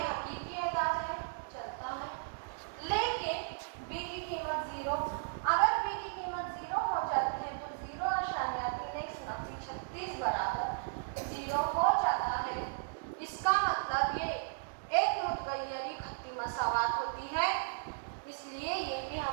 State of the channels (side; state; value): left; silent; digital silence